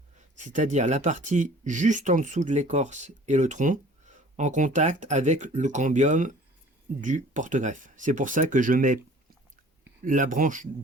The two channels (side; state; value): both; normal; correlation 0.49